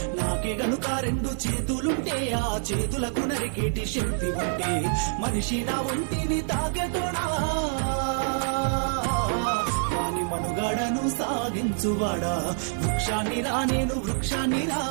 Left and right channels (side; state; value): left; silent; digital silence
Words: నాకే గనుక రెండు చేతులుంటే ఆ చేతులకు నరికేటి శక్తి ఉంటే, మనిషి నా ఒంటిని తాకెటోనా వాని మనుగడను సాగించువాడా. వృక్షాన్నిరా నేను వృక్షాన్నిరా,